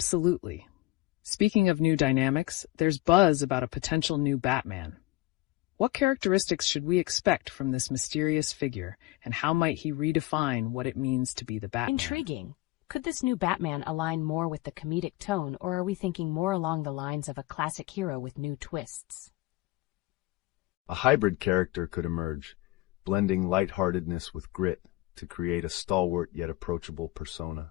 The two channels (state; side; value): quieter; right; 18.3 dB